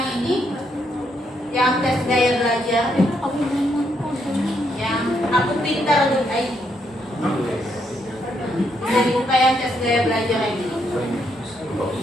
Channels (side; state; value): both; normal; correlation 0.76